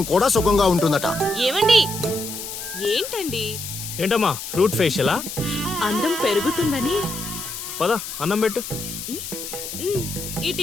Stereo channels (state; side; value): noise; left; hiss, 8 dB below the sound